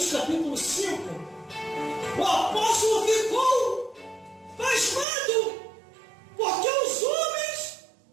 capítulo 5, o apóstolo ficou pasmado, porque os homens,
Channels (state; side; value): drops out; left; at 5.1 s